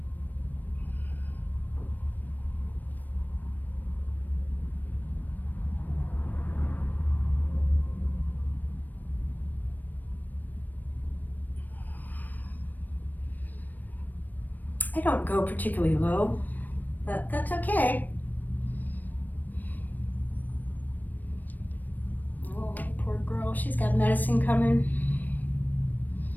I don't go particularly low, but that's okay. Oh, poor girl, she's got medicine coming.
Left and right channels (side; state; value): right; late; 0.086 ms